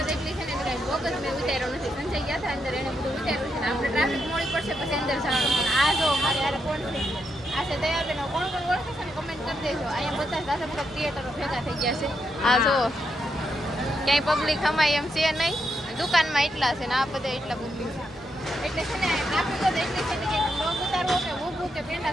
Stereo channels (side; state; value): both; normal; correlation 0.82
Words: એટલી છે ને કઈ બોગ જ મેં ઉતાર્યો નથી. સંજય ગયા હતા અંદર એને બધું ઉતાર્યું છે ને આપણે ટ્રાફિક મોડી પડશે પછી અંદર જવાનું. આ જો મારે યાર કોણ છે આ છે તૈયાર બેનો કોણ કોણ ઓળખે છે ને કમેન્ટ કરી દેજો. અહીંયા બધા સાથે બધા ક્રિએટરો ભેગા થઈ ગયા છે. આ જો ક્યાંય પબ્લિક અમાય એમ છે નહીં. દુકાનમાં એટલા છે ને આ બધા એટલા પબ્લિક છે એટલે છે ને ટ્રાફિક જ એટલી છે ને કે લોગ ઉતારવો કે ઊભું કે પેંડા